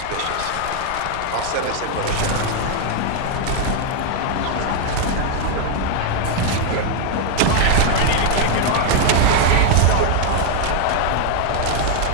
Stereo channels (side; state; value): both; different; correlation 0.00